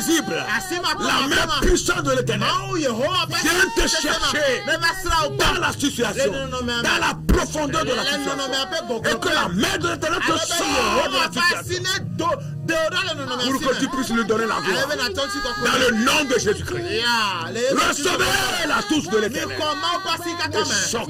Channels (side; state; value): both; identical; correlation 1.00